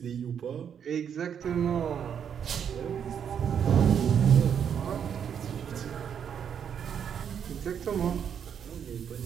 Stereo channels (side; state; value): left; quieter; 8.1 dB